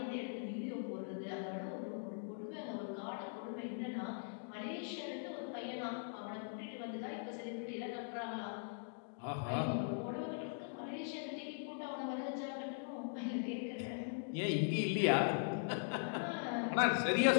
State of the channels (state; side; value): silent; right; digital silence